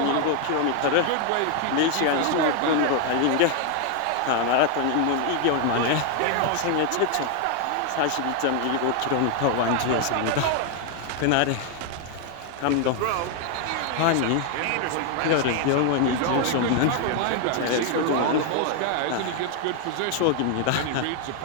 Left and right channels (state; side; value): different; both; correlation 0.01